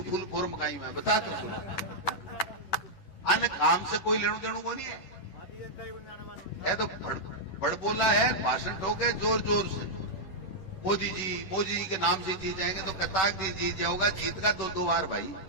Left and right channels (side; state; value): right; late; 10 ms